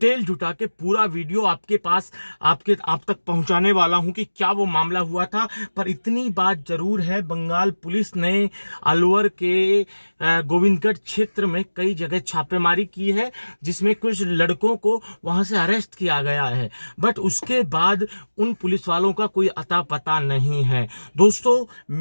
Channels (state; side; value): inverted; both; correlation -1.00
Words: जुटा के पूरा वीडियो आपके पास आप तक पहुंचाने वाला हूं कि क्या वो मामला हुआ था। पर इतनी बात जरूर है, बंगाल पुलिस ने अलवर के गोविंदगढ़ क्षेत्र में कई जगह छापेमारी की है, जिसमें कुछ लड़कों को वहां से अरेस्ट किया गया है। बट उसके बाद उन पुलिस वालों का कोई अता पता नहीं है। दोस्तों,